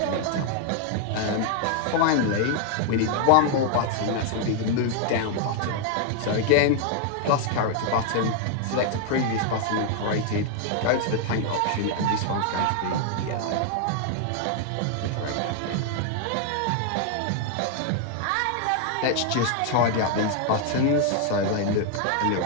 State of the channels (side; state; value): both; different; correlation 0.00